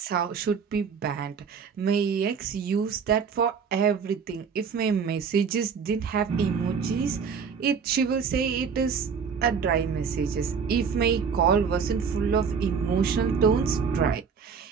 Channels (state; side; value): quieter; left; 6.1 dB